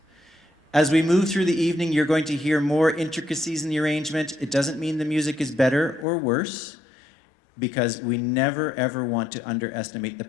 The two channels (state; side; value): drops out; right; at 6.1 s